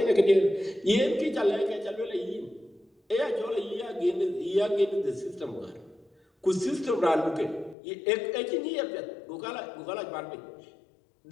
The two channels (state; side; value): drops out; right; at 7.8 s